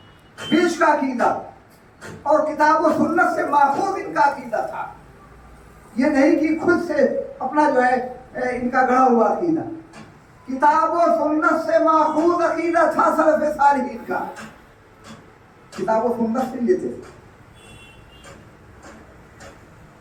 بیچ کا عقیدہ. اور کتاب و سنت سے ماخوذ ان کا عقیدہ تھا. یہ نہیں کہ خود سے اپنا جو ہے ان کا گڑھا ہوا عقیدہ. کتاب و سنت سے ماخوذ عقیدہ تھا سلف صالحین کا. کتاب و سنت سے لیتے تھے.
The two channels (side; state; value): both; identical; correlation 1.00